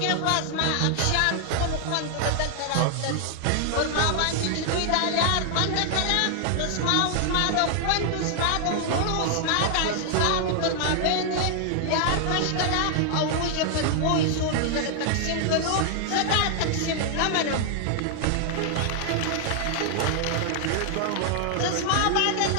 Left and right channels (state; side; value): different; both; correlation 0.00